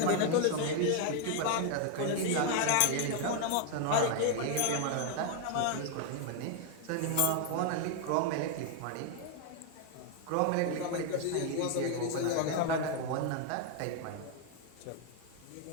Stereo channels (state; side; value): different; both; correlation 0.00